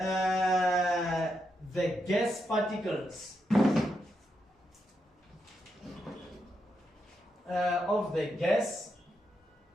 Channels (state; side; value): normal; both; correlation 0.83